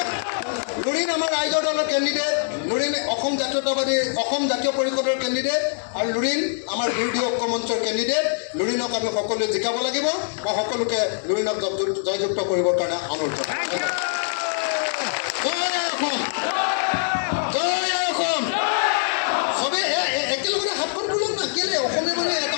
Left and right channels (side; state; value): right; silent; 63 dB below the other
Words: লুৰিণ আমাৰ ৰাইজৰ দলৰ কেণ্ডিডেট, লুৰিণ অসম জাতীয় পৰিষদৰ কেণ্ডিডেট, আৰু লুৰিণ আমাৰ বিৰোধী ঐক্য মঞ্চৰ কেণ্ডিডেট। লুৰিণক আমি সকলোৱে জিকাব লাগিব। মই সকলোকে লুৰিণক জয়যুক্ত কৰিবৰ কাৰণে অনুৰোধ জনাইছোঁ। জয় অসম, জয় অসম। চবেই একেলগতে হাতখন তোলক না, কেলে অসমীয়া মানে এটা